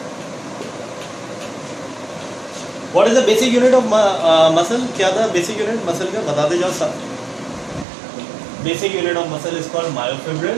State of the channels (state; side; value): drops out; left; at 7.9 s